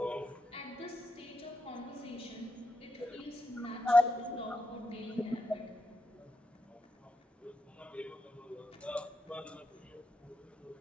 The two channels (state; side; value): normal; both; correlation 0.85